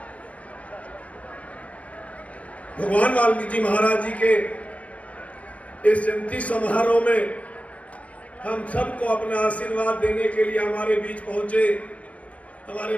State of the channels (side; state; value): right; late; 0.065 ms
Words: भगवान वाल्मीकि महाराज जी के इस जयंती समारोह में हम सबको अपना आशीर्वाद देने के लिए हमारे बीच पहुंचे हमारे